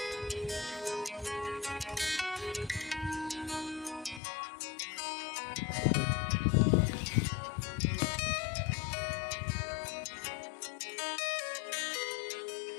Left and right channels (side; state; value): right; drops out; at 4.2 s